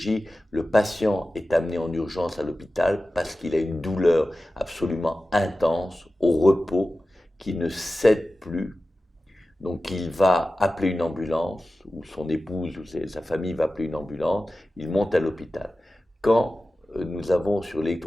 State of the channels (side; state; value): both; normal; correlation 0.94